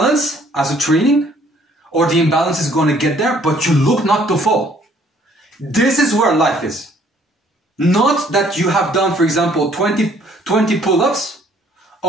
as a training, or the imbalance is going to get there, but you look not to fall. This is where life is. Not that you have done, for example, 20 pull-ups.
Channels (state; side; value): normal; both; correlation 0.61